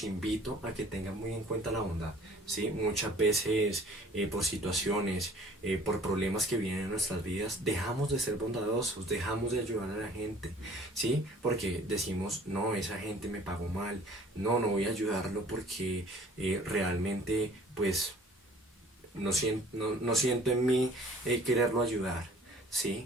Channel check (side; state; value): both; normal; correlation 0.53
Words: invito a que tengan muy en cuenta la bondad, ¿sí? Muchas veces por situaciones, por problemas que vienen en nuestras vidas, dejamos de ser bondadosos, dejamos de ayudar a la gente, ¿sí? Porque decimos, no, esa gente me pagó mal, no voy a ayudarlo porque realmente, pues, no siento en mí quererlo ayudar,